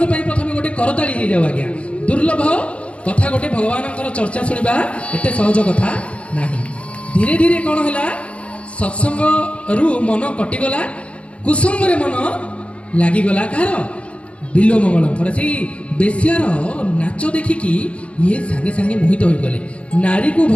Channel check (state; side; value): late; right; 0.062 ms